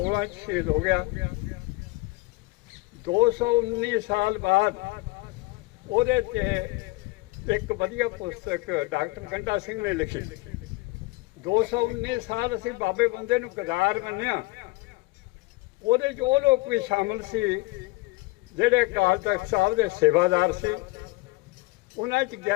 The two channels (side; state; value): right; quieter; 22.3 dB